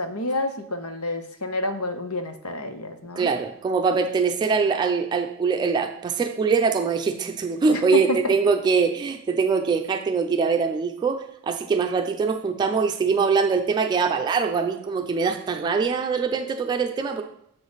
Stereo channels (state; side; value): quieter; left; 4.3 dB